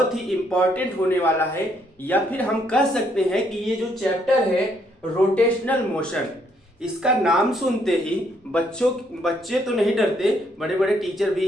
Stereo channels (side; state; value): both; normal; correlation 0.71